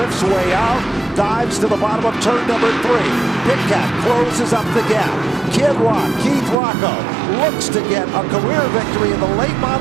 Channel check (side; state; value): left; drops out; at 6.6 s